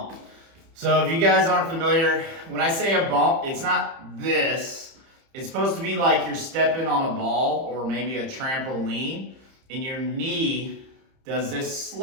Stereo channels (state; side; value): late; left; 30 ms